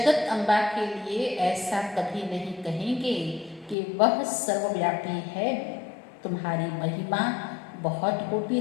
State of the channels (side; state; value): right; drops out; at 3.8 s